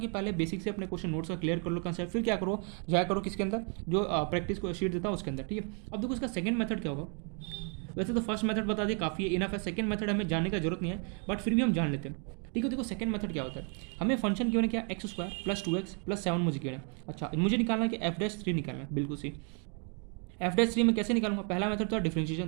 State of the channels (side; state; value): left; quieter; 39.5 dB